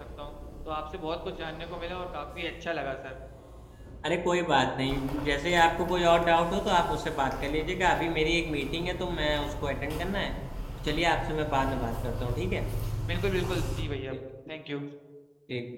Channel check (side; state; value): both; identical; correlation 1.00